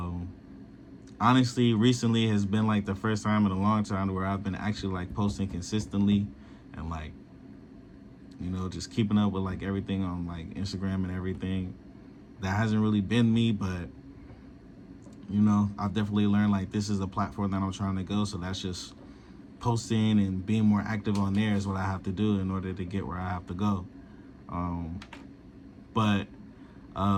Honestly, recently has been like the first time in a long time where I've been actually like posting consistently and like, just keeping up with like everything on like Instagram and everything. That hasn't really been me, but I've definitely learned like this is a platform that I'm trying to go. So that's just posting and being more active on there is what I have to do in order to get where I have to go. But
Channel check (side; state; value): both; identical; correlation 1.00